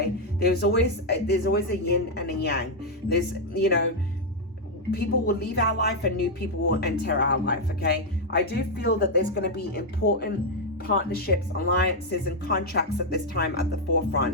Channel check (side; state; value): both; normal; correlation 0.00